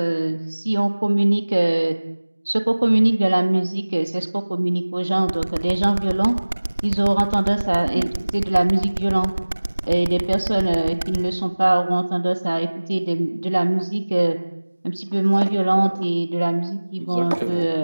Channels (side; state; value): both; inverted; correlation -1.00